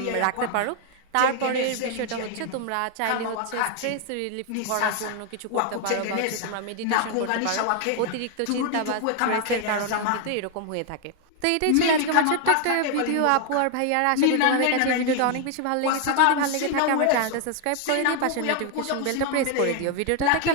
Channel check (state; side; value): different; both; correlation 0.00